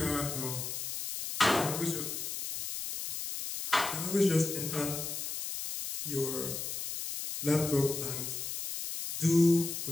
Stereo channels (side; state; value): left; noise; hiss, 5 dB below the sound